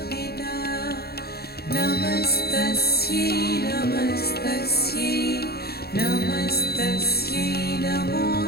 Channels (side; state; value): right; late; 0.46 ms